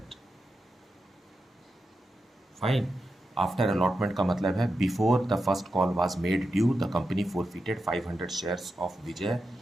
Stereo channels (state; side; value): normal; both; correlation 0.89